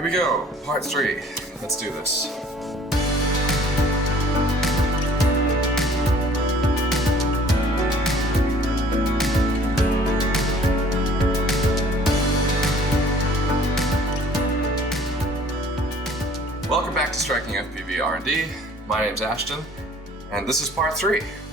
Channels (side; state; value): both; normal; correlation 0.54